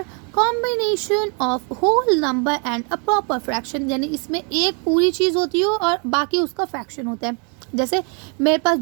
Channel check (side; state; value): left; quieter; 37.3 dB